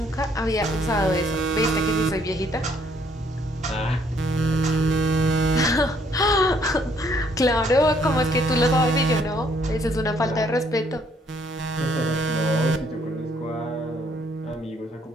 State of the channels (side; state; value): both; normal; correlation 0.66